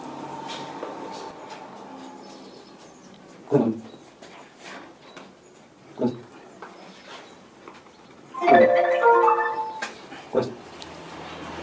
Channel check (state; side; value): identical; both; correlation 1.00